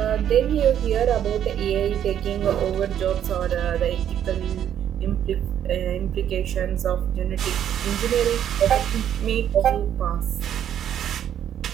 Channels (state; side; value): quieter; left; 10.0 dB